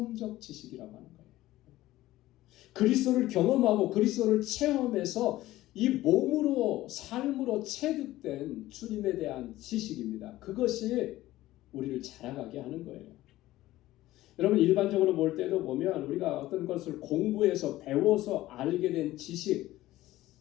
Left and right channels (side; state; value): right; quieter; 16.1 dB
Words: 지식이라고 하는 거예요. 그리스도를 경험하고 그리스도를 체험해서 이 몸으로 삶으로 체득된 주님에 대한 지식입니다. 그것이 우리를 자라가게 하는 거예요. 여러분 일반적으로 볼 때도 보면 우리가 어떤 것을 공부해서 배워서 알게 된 지식